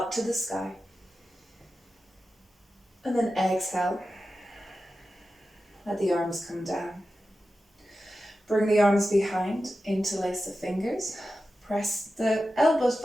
to the sky. And then exhale. Let the arms come down. Bring the arms behind, interlace the fingers. Press the elbows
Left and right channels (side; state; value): both; normal; correlation 0.92